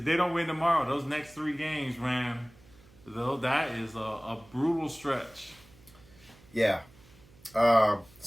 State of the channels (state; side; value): noise; right; hum, 26 dB below the sound